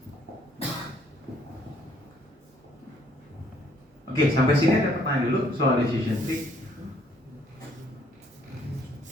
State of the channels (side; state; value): both; normal; correlation 0.65